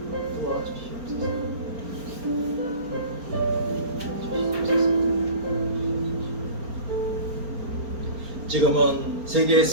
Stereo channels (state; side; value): late; left; 4.3 ms